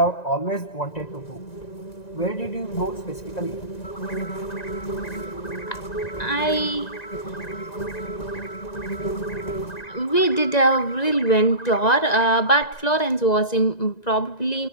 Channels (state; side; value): late; right; 1.9 ms